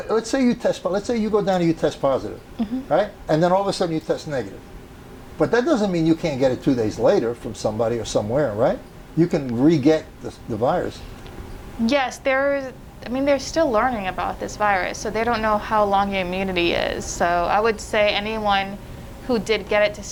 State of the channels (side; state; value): both; identical; correlation 1.00